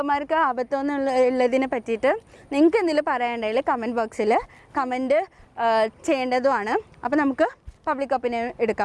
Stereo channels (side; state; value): both; identical; correlation 1.00